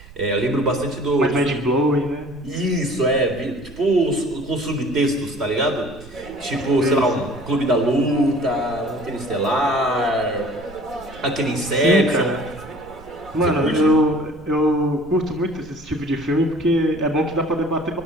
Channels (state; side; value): noise; right; rumble, 20 dB below the sound